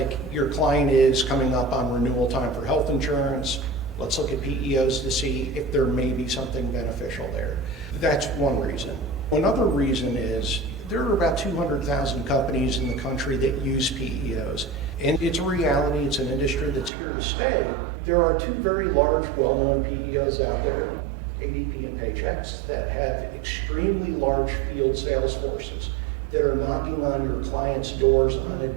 your client is coming up on renewal time for health insurance. Let's look at PEOs to see if there may be something beneficial there. That's one reason. Another reason is there are about 200,000 companies in the country that use PEOs. And it's a reality, it's an industry that's here to stay. There are two very large, well-known PEOs out there, ADP and Paychex, that have extremely large field sales forces that are knocking on your clients' doors on a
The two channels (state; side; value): drops out; left; at 16.9 s